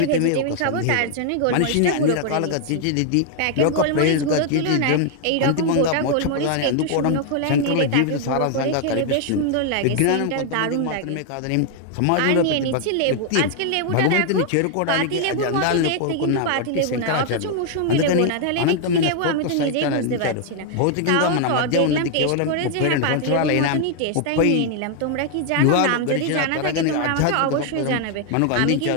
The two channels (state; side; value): different; both; correlation 0.00